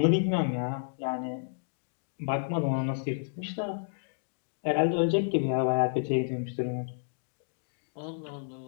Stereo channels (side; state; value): right; silent; digital silence